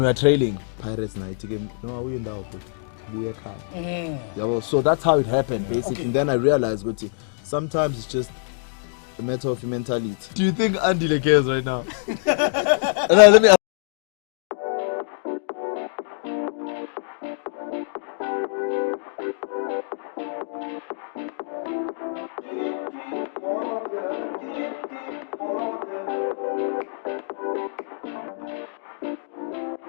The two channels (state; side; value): silent; right; digital silence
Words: we are trailing Pirates night game, no awuye ndawo bro, buye ekhaya. Yabo, so that's how it happened basically. And then I realized ukuthi sometimes it's just a matter of mentality. Do you think Andile cares right now? Let me ask.